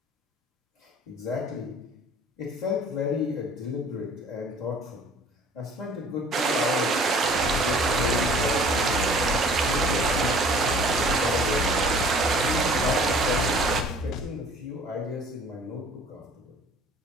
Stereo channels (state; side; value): normal; both; correlation 0.51